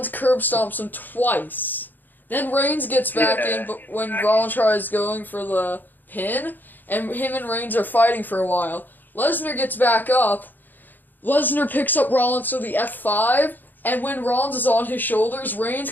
curb stomps him twice. Then Reigns gets back in, but when Rollins tries going for the pin, and him and Reigns are fighting for a while. Lesnar gets back up. Lesnar picks up Rollins to the F5, and when Rollins is on his shoulders, Reigns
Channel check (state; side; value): late; right; 0.088 ms